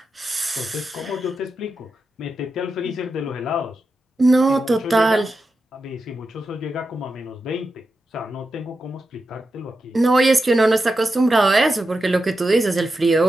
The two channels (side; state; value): both; normal; correlation 0.89